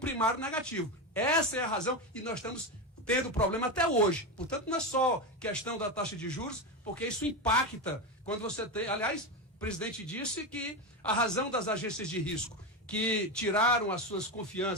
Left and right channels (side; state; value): both; normal; correlation 0.15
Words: negativo. Essa é a razão e nós estamos tendo problema até hoje. Portanto, não é só questão da taxa de juros, porque isso impacta quando você tem... Aliás, o presidente disse que a razão das agências de risco que tiraram as suas